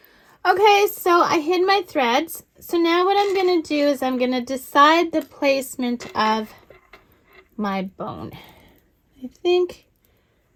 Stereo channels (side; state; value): both; identical; correlation 1.00